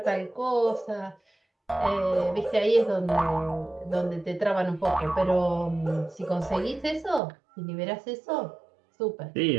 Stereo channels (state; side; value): drops out; left; at 7.2 s